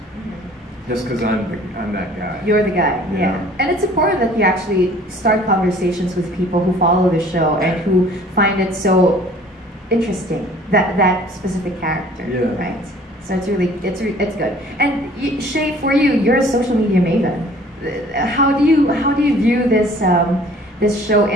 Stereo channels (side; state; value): both; normal; correlation 0.52